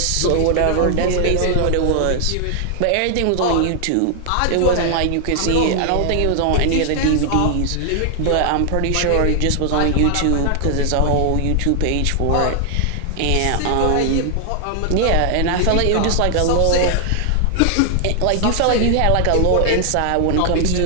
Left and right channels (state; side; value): different; both; correlation 0.00